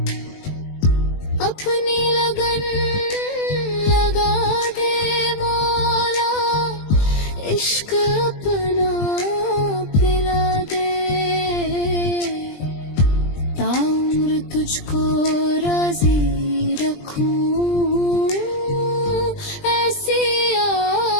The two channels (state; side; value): late; right; 20 ms